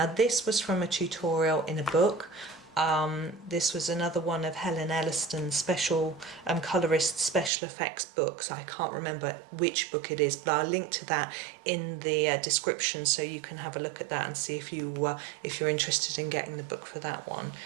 this was from a tutorial in a book. This was another one of Helen Elliston's special Colorist special effects books. I can't remember which book it is, but I'll link to that in the description so you can have a look at that and see if you're interested in getting the book for that one.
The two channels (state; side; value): drops out; left; at 7.5 s